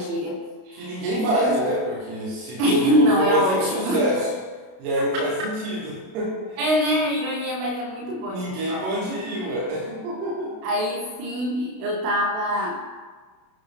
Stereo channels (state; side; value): late; left; 32 ms